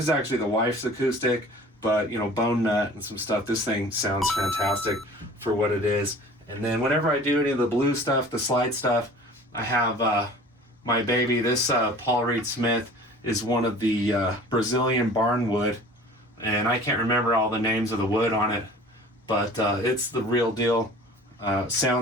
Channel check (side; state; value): both; normal; correlation 0.45